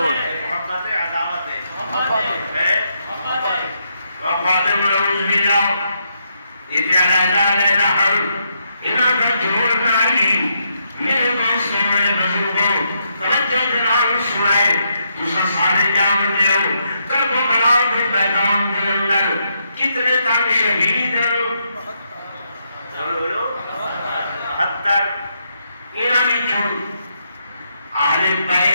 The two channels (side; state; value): both; inverted; correlation -0.78